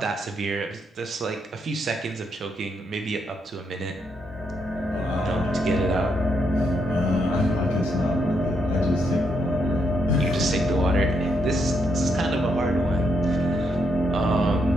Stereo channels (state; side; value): normal; both; correlation 0.78